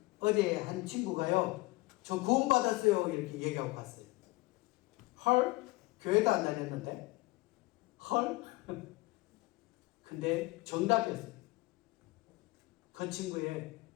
어제 한 친구가요, 저 구원받았어요 이렇게 얘기하고 갔어요. 헐? 교회도 안 다녔는데? 헐? 근데 정답이었어요. 그 친구의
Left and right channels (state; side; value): quieter; right; 21.9 dB